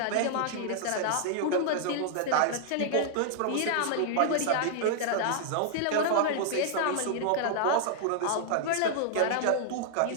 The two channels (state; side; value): different; both; correlation -0.01